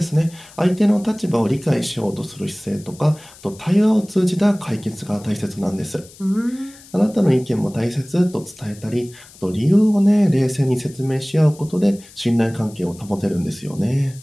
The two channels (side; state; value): left; noise; hiss, 22 dB below the sound